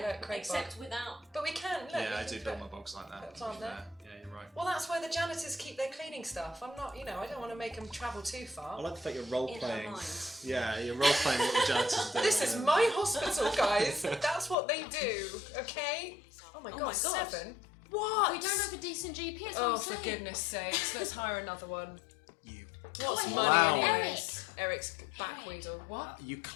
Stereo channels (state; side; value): drops out; right; at 14.6 s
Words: Yeah, look, Craig Except bog. without. But we can, look. yeah I we do can build put- my bogs like that. put a to plant be there. fair. Yeah, you're right. Well, that's where the janitors keep their cleaning stuff. I'm not, I don't want to make them travel too I far. like the fact you're role In her playing. mind. Yeah, you're role playing what the janitors are doing. This is my hospital, guys. That's what they do, okay? Oh my Oh god, my God. 7? What? We don't have a decent GP. That's Oh, what I'm for saying. goodness sakes. Let's hire another one. You. What's Clown. money Eric. anyways? Eric's backweedle. What? You